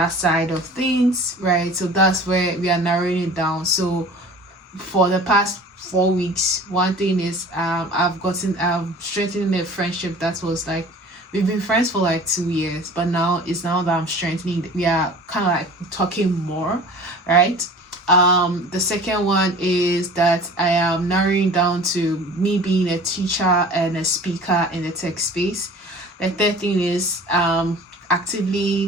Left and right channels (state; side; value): normal; both; correlation 0.43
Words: side of things, right? So that's where we are narrowing it down. So for the past 4 weeks, one thing is I'm strengthening a friendship that was like, we've been friends for like 2 years, but now that I'm strengthening, we are kind of like talking more, right? The second one is that I am narrowing down to me being a teacher and a speaker in the tech space. The third thing is I